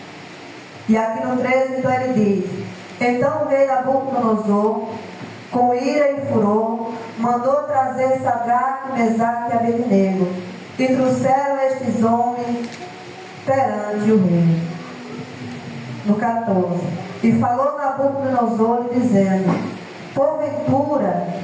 E aqui no 13 então ele diz: então o rei Nabucodonosor, com ira e furor, mandou trazer Sadraque, Mesaque e Abednego, e trouxeram estes homens perante o rei. No 14: e falou Nabucodonosor dizendo: porventura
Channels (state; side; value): identical; both; correlation 1.00